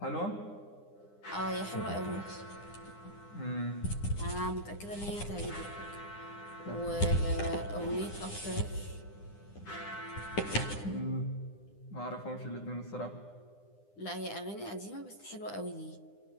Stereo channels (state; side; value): late; right; 9.9 ms